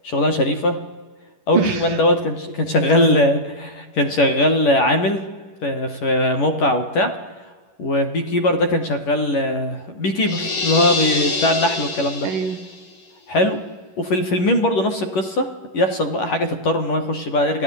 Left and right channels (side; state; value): right; late; 11 ms